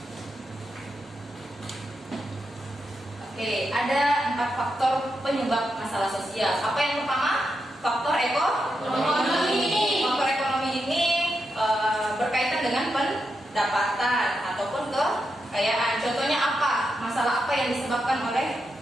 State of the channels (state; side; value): normal; both; correlation 0.86